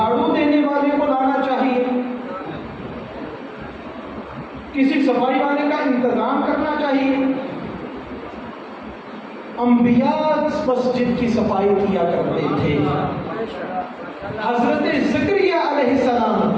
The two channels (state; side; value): identical; both; correlation 1.00